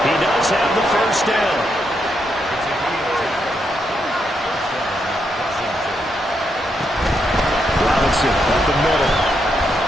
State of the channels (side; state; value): both; normal; correlation 0.80